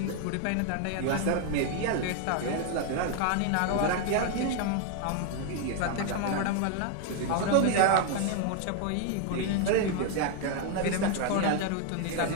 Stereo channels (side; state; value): both; different; correlation 0.01